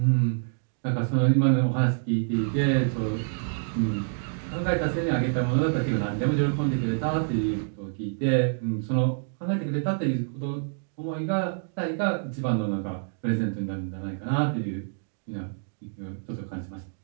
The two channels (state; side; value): silent; left; digital silence